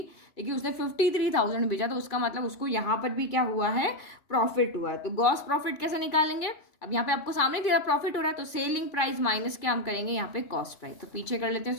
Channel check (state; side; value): late; right; 2.3 ms